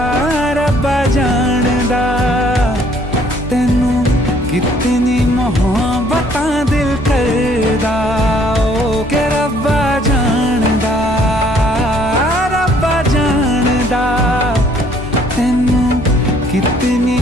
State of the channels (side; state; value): both; normal; correlation 0.61